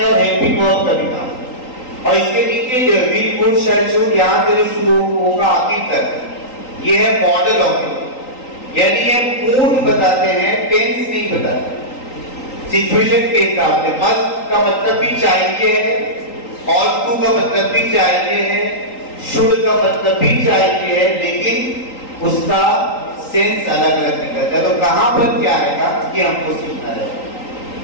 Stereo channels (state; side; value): late; right; 3.8 ms